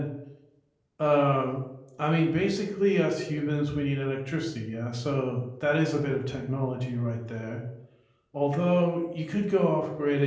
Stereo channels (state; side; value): identical; both; correlation 1.00